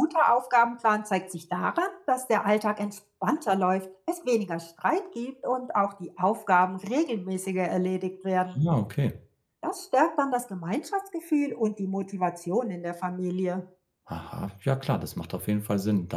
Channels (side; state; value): both; identical; correlation 1.00